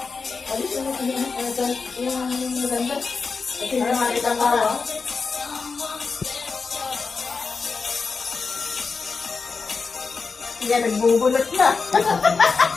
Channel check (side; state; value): right; quieter; 4.8 dB